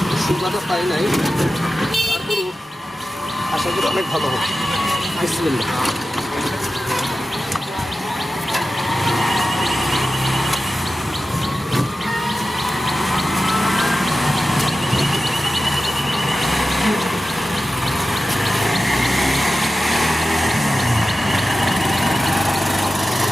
সুগাটা পাই নাই, তারপরেও আশা করি অনেক ভালো হবে। বিসমিল্লাহ।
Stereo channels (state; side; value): normal; both; correlation 0.93